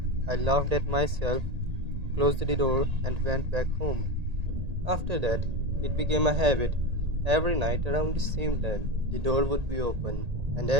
I laughed at myself, closed the door, and went back home. After that, it became a habit. Every night around the same time, the door would be open, and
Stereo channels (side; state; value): left; late; 1.8 ms